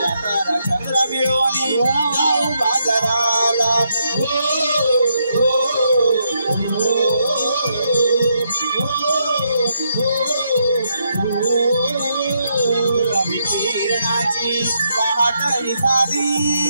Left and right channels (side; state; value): both; inverted; correlation -0.78